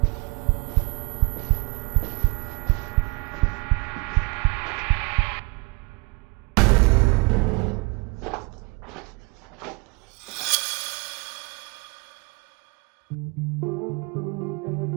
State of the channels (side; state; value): left; quieter; 27.5 dB